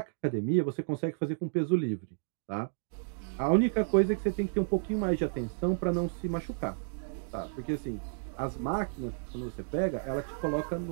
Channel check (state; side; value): silent; left; digital silence